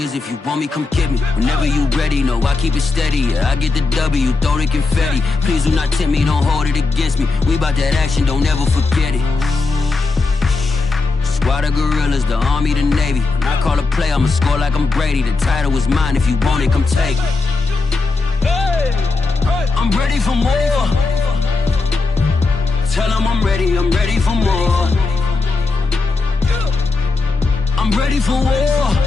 if you want me, come get me. Whenever you ready, no, I keep it steady. Yeah, I get the W, throw the confetti. Please do not tempt me, don't hold it against me. We bout that action, don't ever forget it. Squad of gorillas, the army, the navy. When I call a play, I'ma score like I'm Brady. The title is mine, if you want it, come take it. Hey, I'm ready for more. Tell them I'm ready for more. I'm ready for war.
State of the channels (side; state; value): right; quieter; 3.8 dB